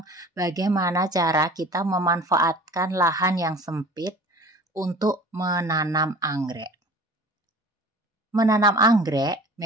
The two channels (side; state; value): both; normal; correlation 0.43